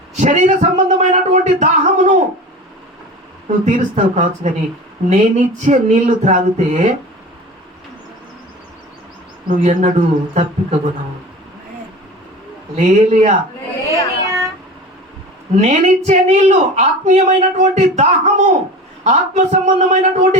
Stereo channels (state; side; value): normal; both; correlation 0.35